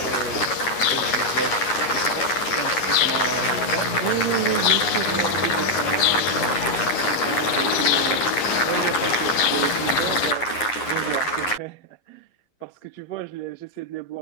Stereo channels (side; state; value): right; late; 9.6 ms